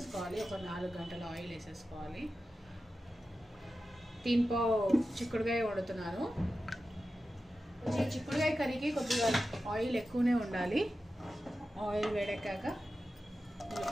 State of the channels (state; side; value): normal; both; correlation 0.92